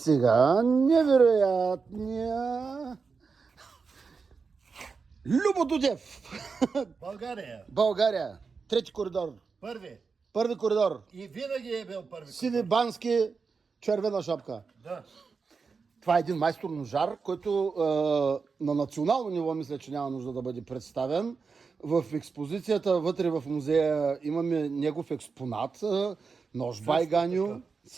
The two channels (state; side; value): quieter; left; 5.0 dB